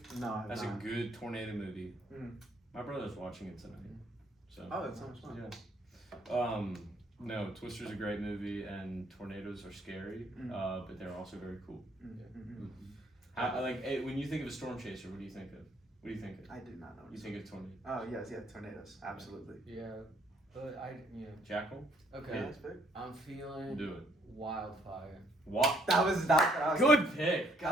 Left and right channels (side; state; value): both; normal; correlation 0.66